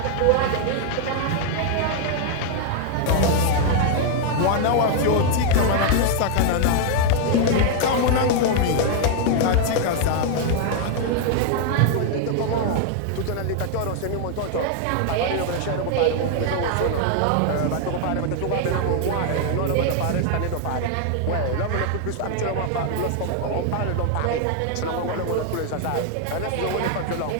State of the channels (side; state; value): both; different; correlation 0.00